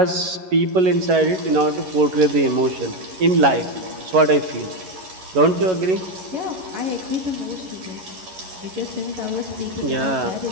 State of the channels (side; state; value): left; late; 11 ms